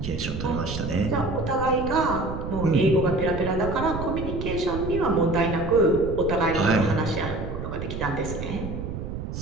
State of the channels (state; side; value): noise; right; rumble, 6 dB below the sound